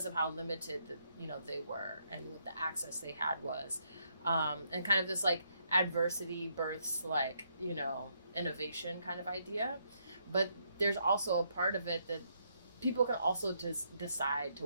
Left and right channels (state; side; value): inverted; both; correlation -0.75